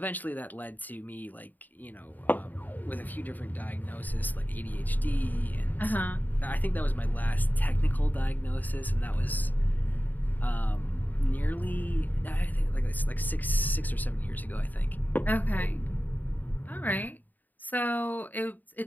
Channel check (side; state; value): right; late; 0.085 ms